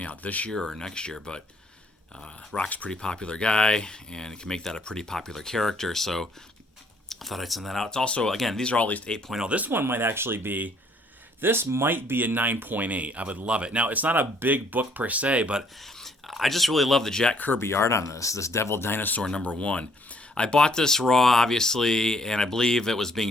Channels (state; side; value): normal; both; correlation 0.63